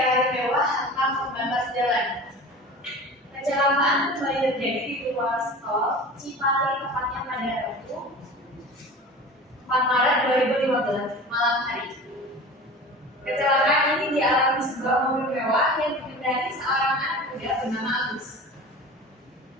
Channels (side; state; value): both; normal; correlation 0.36